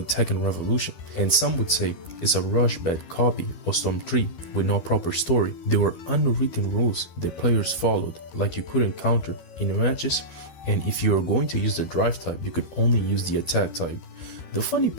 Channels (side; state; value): right; late; 12 ms